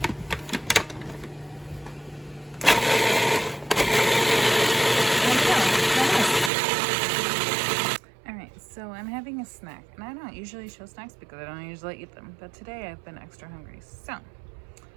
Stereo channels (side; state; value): left; drops out; at 6.5 s